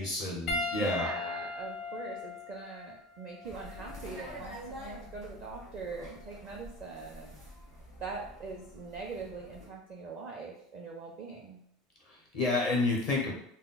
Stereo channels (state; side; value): normal; both; correlation 0.36